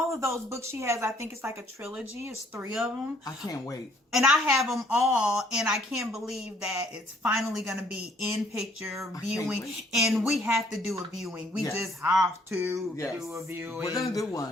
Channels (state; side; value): normal; both; correlation 0.63